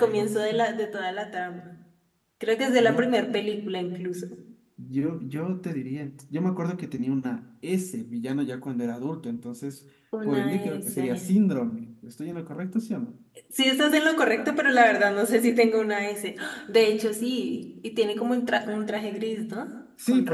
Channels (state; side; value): identical; both; correlation 1.00